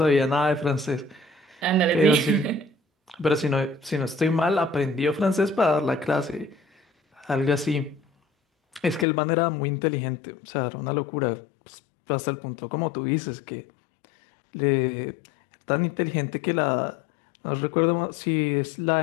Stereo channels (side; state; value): right; drops out; at 9.1 s